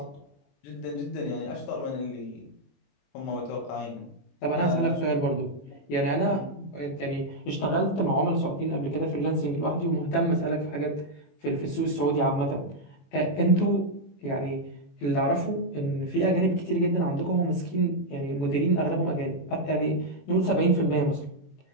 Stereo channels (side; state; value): right; late; 21 ms